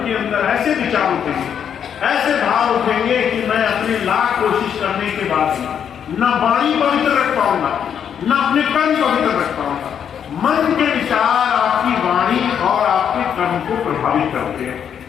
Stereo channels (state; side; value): quieter; right; 8.3 dB